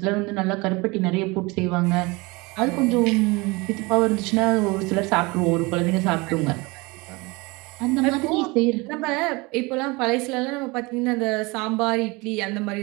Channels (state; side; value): quieter; left; 25.0 dB